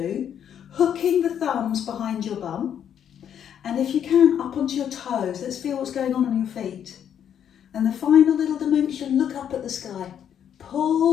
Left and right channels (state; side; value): quieter; right; 9.1 dB